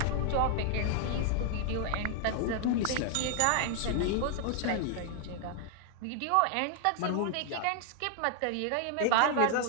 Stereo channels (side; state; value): both; different; correlation 0.00